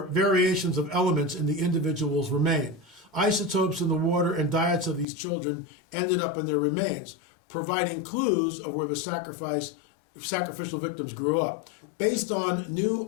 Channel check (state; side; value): drops out; right; at 5.1 s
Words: variations of elements in the individual's remain. Isotopes in the water and diets of these children ended up in their remains, providing clues of where the sacrificial victims grew up. Based on new